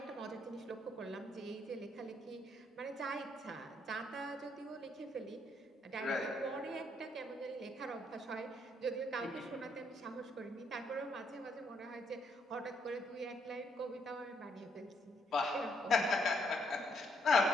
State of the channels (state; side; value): normal; both; correlation 0.72